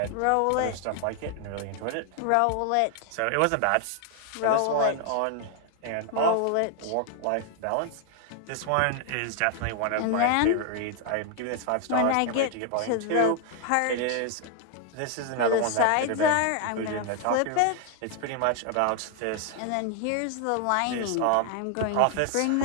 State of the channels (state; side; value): different; both; correlation 0.00